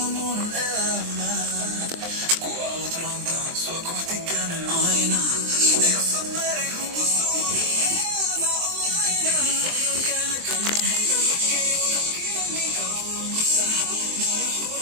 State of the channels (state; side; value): late; left; 23 ms